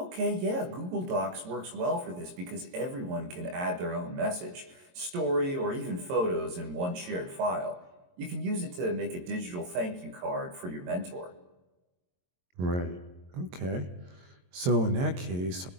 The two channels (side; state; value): left; late; 22 ms